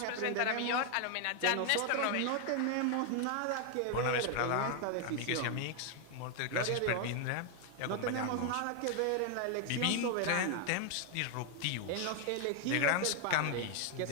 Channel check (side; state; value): both; different; correlation 0.00